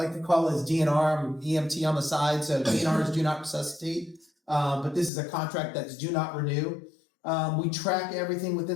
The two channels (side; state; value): right; drops out; at 5.1 s